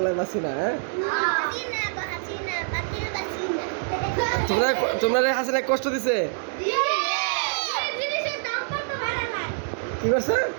বাসি না। হ্যাঁ, তোমরা তোমরা হাসিনা কষ্ট দিছে। কি করছে?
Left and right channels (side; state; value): left; silent; digital silence